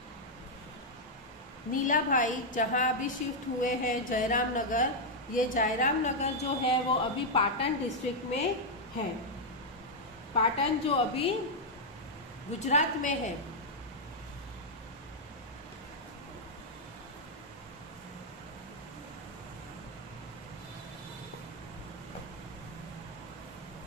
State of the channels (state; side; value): normal; both; correlation -0.03